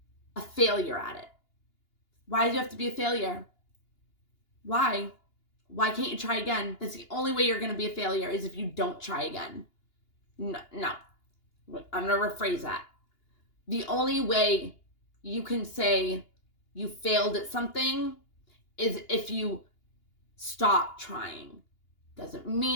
a failure at it. Why do you have to be a failure? Why? Why can't you try again? That's the only way you're going to be a failure, is if you don't try again. No. I'm going to rephrase that. The only way you can say you failed at something is if you stop trying. Doesn't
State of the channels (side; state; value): right; late; 2.8 ms